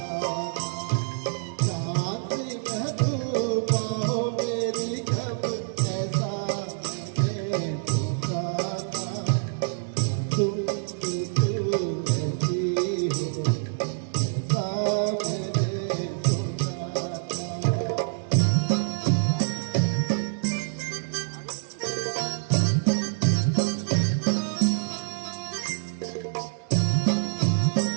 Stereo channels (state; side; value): silent; left; digital silence